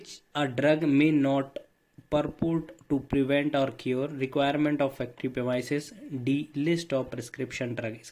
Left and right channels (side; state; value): both; identical; correlation 1.00